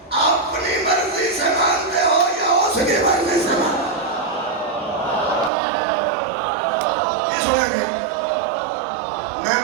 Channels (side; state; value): left; drops out; at 5.5 s